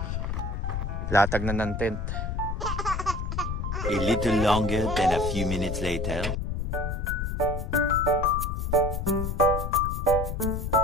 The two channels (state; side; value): noise; left; rumble, 2 dB below the sound